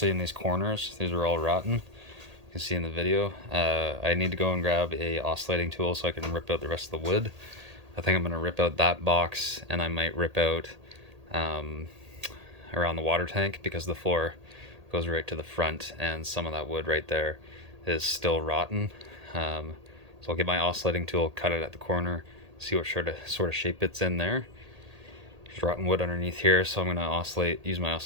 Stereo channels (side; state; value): left; late; 1.8 ms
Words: in these corners. These were all rotten. You can see in the video. I need to go and grab a oscillating tool so I can rip out the rest of the wood. I think I'm going to rip out that box, and I might rip out around the water tank, because the floor goes right to the front and some of that wood right there is still rotten. So I'll get my oscillating tool, cut it at the corner, see what sort of shape it's in there. There's rotten wood underneath here, so I'm going to use my